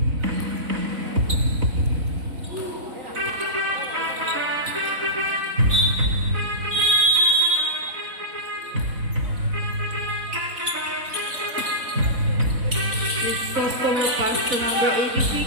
Customer pass to number 86,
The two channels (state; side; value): late; left; 4.0 ms